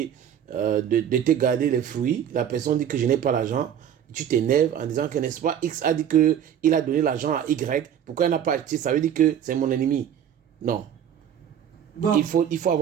de te garder les fruits. La personne dit que je n'ai pas l'argent. Tu t'énerves en disant que, n'est-ce pas, X a dit qu'il a donné l'argent à Y. Pourquoi il n'a pas acheté? Ça veut dire que c'est mon ennemi. Non. Bon. Il faut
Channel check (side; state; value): left; quieter; 9.4 dB